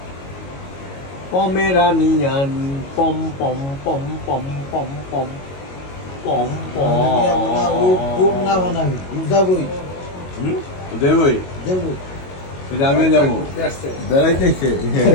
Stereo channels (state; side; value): late; right; 22 ms